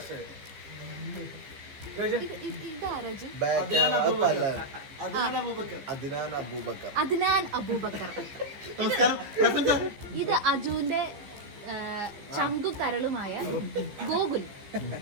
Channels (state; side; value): late; left; 15 ms